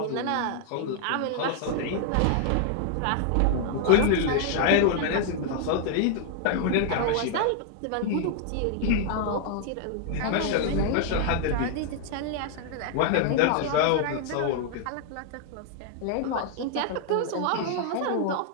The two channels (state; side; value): different; both; correlation 0.00